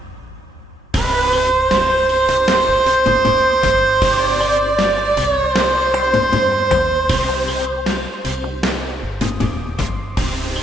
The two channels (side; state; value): both; normal; correlation 0.77